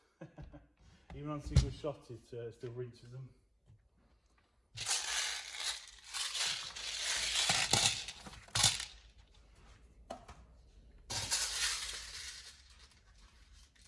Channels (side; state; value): both; identical; correlation 1.00